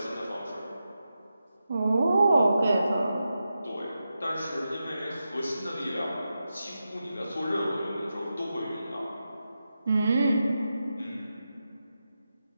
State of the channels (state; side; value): inverted; both; correlation -0.90